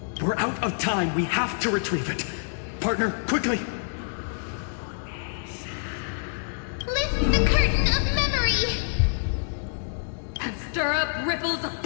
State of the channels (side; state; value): right; silent; digital silence